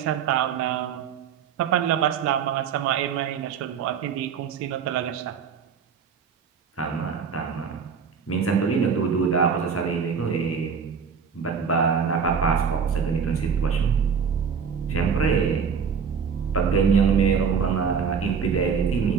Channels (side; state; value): left; quieter; 6.5 dB